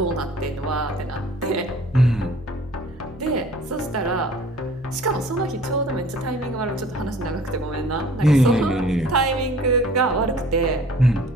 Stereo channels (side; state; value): both; normal; correlation 0.50